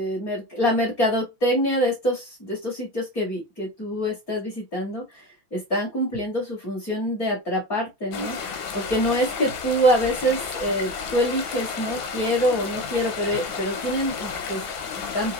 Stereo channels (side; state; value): right; late; 6.0 ms